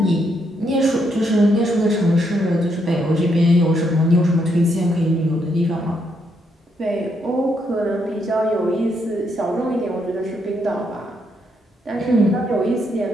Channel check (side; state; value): both; normal; correlation 0.76